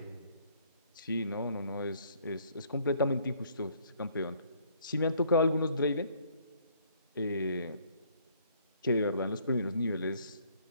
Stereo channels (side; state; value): both; inverted; correlation -0.62